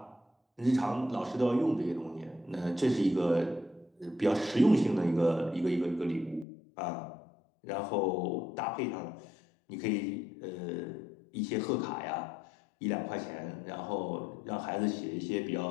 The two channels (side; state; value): right; drops out; at 6.5 s